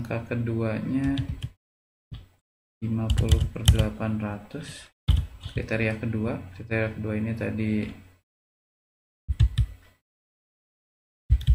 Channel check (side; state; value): both; identical; correlation 1.00